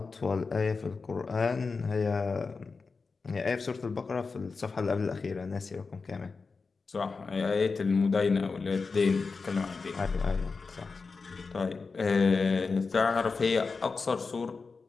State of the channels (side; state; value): right; quieter; 4.5 dB